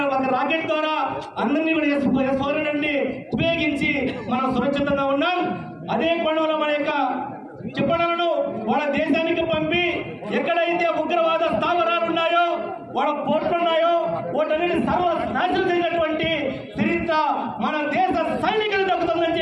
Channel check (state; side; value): identical; both; correlation 1.00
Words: ఒక రాకెట్ ద్వారా అందరినీ కూడా S-400 ఉపయోగించి మనం సురక్షితంగా ఉన్నాం. అదే కోణంలో మన యొక్క చెప్పలను వాళ్ళ దేశానికి పంపి ఎక్కడైతే ఉగ్రవాద స్థావరాలు ఉన్నాయో, వాళ్ళ పోర్టులు ఉన్నాయో, వాటన్నిటి సర్వనాశనం చేసినటువంటి చరిత్ర మన దేశ సైనికులు దక్కుతుందని